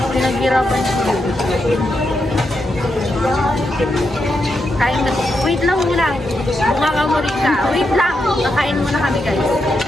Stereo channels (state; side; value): normal; both; correlation 0.84